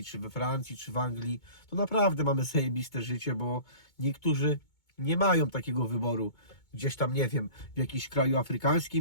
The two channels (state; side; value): late; right; 2.2 ms